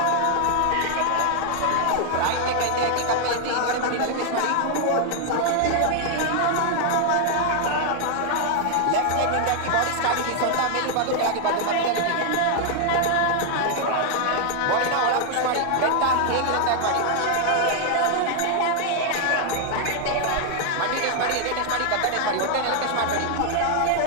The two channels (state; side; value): different; both; correlation 0.00